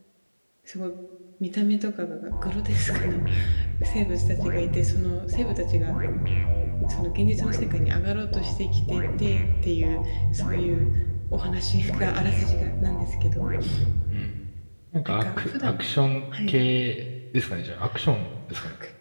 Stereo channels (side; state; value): both; inverted; correlation -1.00